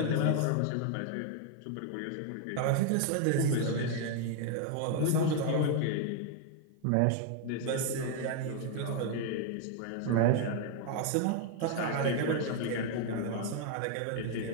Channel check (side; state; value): both; different; correlation 0.00